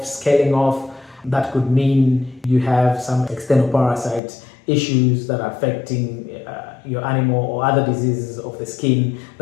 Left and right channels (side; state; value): right; drops out; at 4.2 s